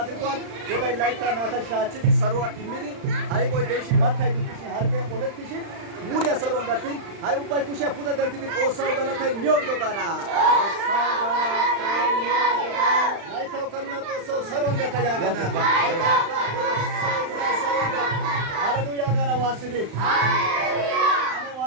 ጎባይ ላይታ ናተሻችን ሰሩ ይሚዲ አይቆይ ደሽ ማታይ ዱክሽ ሀርገ ፖለቲሽ ሙድ ያሰሩ እንዳትኝ አይ ኡባይ ኩሽ ፑተ ደልቲ ጦሳው ገለታይ ኒዮግዶ ጋና ላይታው ከኑና ጦሳው ሰሩ እንደታ ያገና ሃሌሉያ ጋና ዋስሪ ሃሌሉያ አሜ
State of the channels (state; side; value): late; left; 35 ms